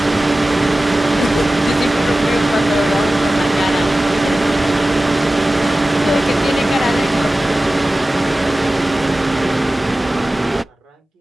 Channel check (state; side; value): normal; both; correlation 0.96